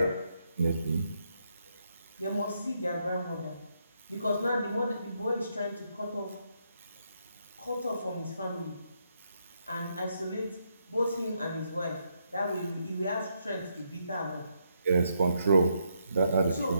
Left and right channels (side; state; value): both; inverted; correlation -0.78